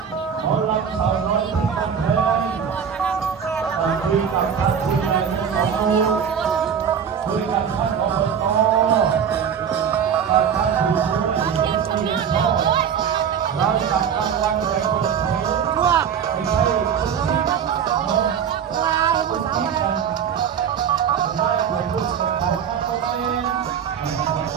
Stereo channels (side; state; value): left; quieter; 7.7 dB